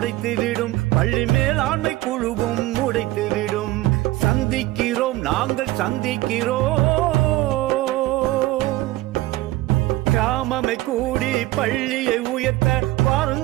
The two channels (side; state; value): left; quieter; 17.9 dB